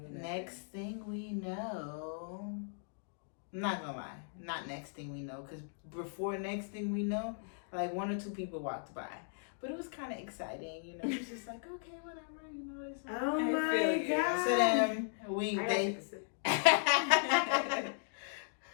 to do that. Next thing we know, I'm not gonna lie, not next thing we know, because before next thing we know, like 1 or 2 people walked by. But it was kind of exciting, It was just like, okay, whatever, It's like, Oh my god. so then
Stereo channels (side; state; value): right; silent; digital silence